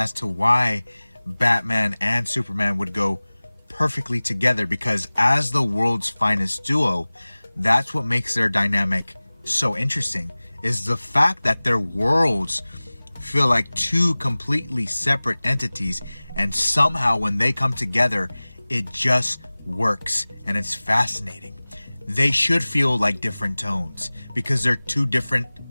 to why Batman and Superman would go perfectly together, because as the world's finest duo, that's what makes their dynamic so interesting, is the fact that their worlds feel like 2 completely separate entities, and somehow when they come together, it just works, and it's fascinating. They should feel like different tones because they're 2 different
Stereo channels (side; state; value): both; inverted; correlation -1.00